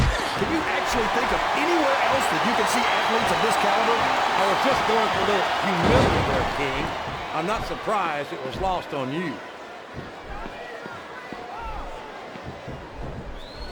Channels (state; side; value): identical; both; correlation 1.00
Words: Can you actually think of anywhere else that you can see athletes of this caliber? I was just going for a little humility there, King. I'm not surprised it was lost on you.